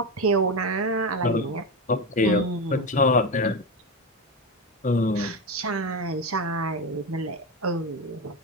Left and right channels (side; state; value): both; normal; correlation 0.16